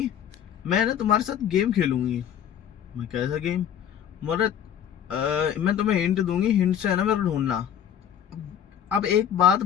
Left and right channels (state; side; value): quieter; right; 9.4 dB